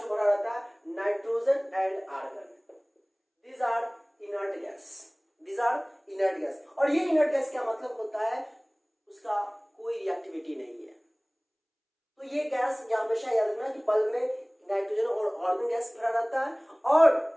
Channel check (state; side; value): identical; both; correlation 1.00